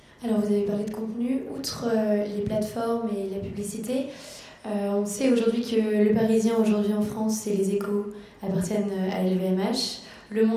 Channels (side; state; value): both; identical; correlation 1.00